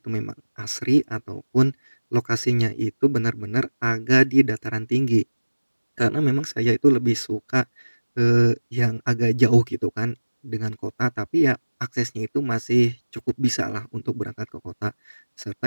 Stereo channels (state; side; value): inverted; both; correlation -1.00